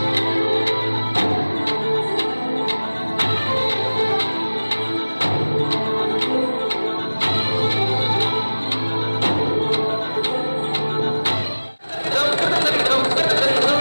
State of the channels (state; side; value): inverted; both; correlation -1.00